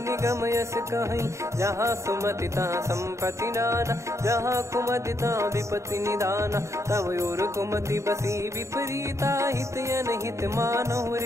निगम यस कहीं। जहाँ सुमति तहाँ संपत्ति नाना जहाँ कुमति तहाँ विपत्ति निदाना। तव और कुमति बसी विपरीता हित अनहित मानहु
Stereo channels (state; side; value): late; left; 0.14 ms